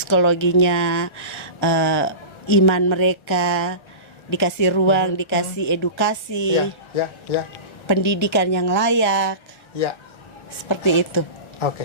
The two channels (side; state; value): right; late; 1.4 ms